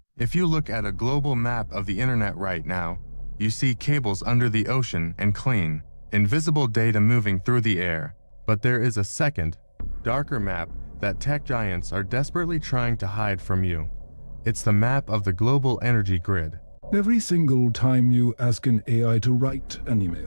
If you look at a global map of the internet right now, you see cables under the ocean and clean, invisible data moving through the air. But there is a second, darker map that tech giants are desperately trying to hide from you. It's the map of the global energy grid. Every single time you ask an AI to write an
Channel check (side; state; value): both; inverted; correlation -1.00